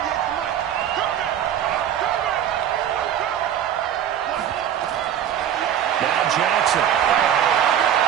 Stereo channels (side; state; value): left; quieter; 9.9 dB